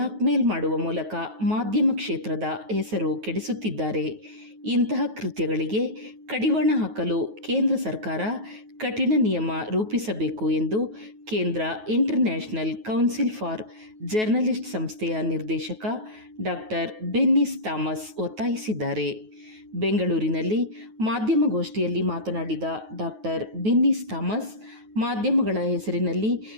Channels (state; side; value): late; left; 9.3 ms